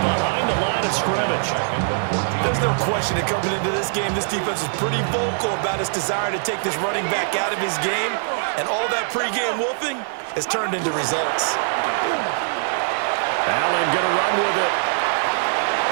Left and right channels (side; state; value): left; silent; digital silence